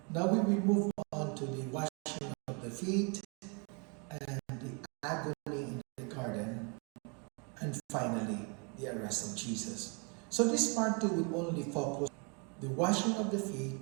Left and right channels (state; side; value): quieter; left; 34.5 dB